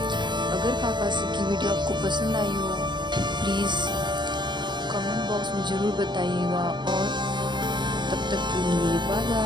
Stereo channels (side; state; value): left; late; 0.22 ms